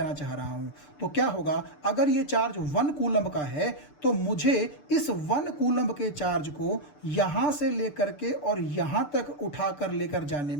चाह रहा हूं, तो क्या होगा, अगर ये चार्ज 1 कूलम का है तो मुझे इस 1 कूलम के चार्ज को यहां से लेकर के और यहां तक उठाकर लेकर जाने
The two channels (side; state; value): right; late; 6.8 ms